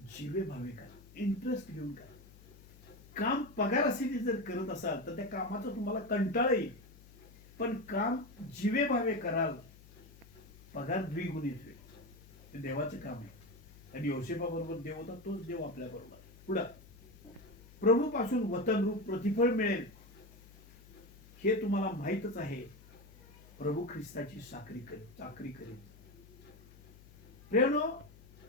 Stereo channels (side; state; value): left; noise; hum, 22 dB below the sound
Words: जीवे भावे करा. इंटरेस्ट घेऊन करा. काम पगारासाठी जर करत असाल तर त्या कामाचा तुम्हाला कंटाळा येईल, पण काम जीवे भावे कराल, पगार द्विगुणित होईल. ते देवाचं काम आहे. आणि योसेफाबरोबर देव होता, तोच देव आपल्या बरोबर. पुढं, प्रभू पासून वतनरूप प्रतिफळ मिळेल हे तुम्हाला माहीतच आहे. प्रभू ख्रिस्ताची चाकरी करेल. प्रियानो,